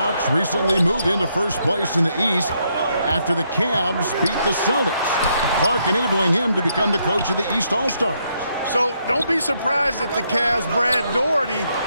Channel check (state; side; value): inverted; both; correlation -0.75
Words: recently moved into first place in the East after the Cavs beat the Celtics. Clark enabling him to become the coach of the East All-Stars. So don't be surprised if the Cavs' Brad Daugherty